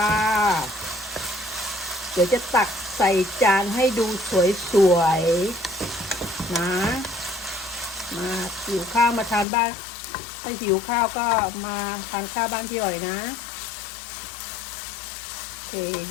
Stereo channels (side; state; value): right; drops out; at 9.5 s